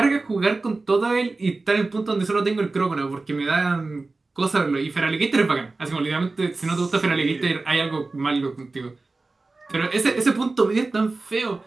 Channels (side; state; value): left; quieter; 3.5 dB